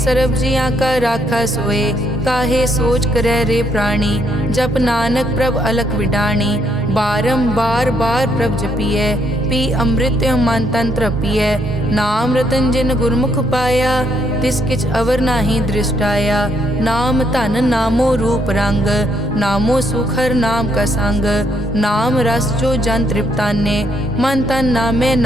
सर्ब जियां का राखा सोए, काहे सोच करे रे प्राणी, जप नानक प्रभ अलख विडाणी, बारंबार बार प्रभ जपिए, पी अमृत मन तन तृपिए, नाम रतन जिन गुरमुख पाया, तिस किछ अवर नाही दृष्टाया, नाम धन नामो रूप रंग, नामो सुखर नाम का संग, नाम रस जो जन तृप्ताने, मन तन नामे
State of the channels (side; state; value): both; normal; correlation 0.73